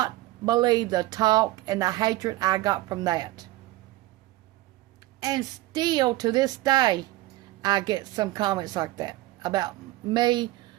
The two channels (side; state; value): left; quieter; 17.9 dB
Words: believe the talk and the hatred I got from that. And still to this day, I get some comments like that about me